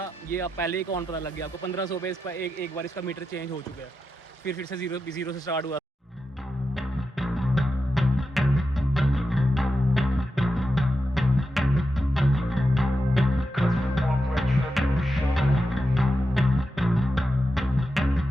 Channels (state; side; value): normal; both; correlation 0.89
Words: ये आप पहले ही कौन पता लग गया आपको, 1500 पे इसका एक बार इसका मीटर चेंज हो चुका है, फिर से जीरो से स्टार्ट हुआ।